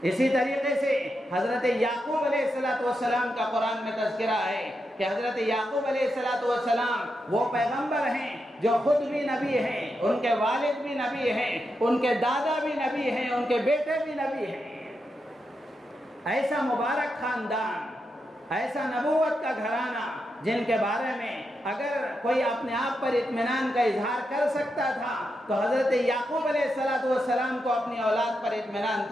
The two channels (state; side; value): normal; both; correlation 0.85